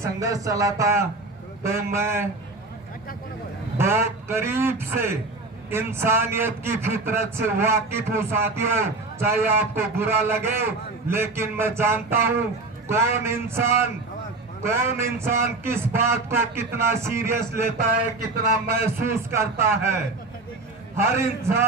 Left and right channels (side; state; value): left; quieter; 3.3 dB